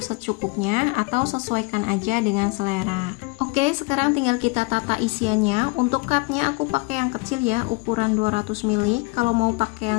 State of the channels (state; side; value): quieter; right; 27.1 dB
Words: secukupnya atau sesuaikan aja dengan selera. Oke, sekarang tinggal kita tata isiannya. Untuk cupnya aku pakai yang kecil ya, ukuran 200 ml. Kalau mau pakai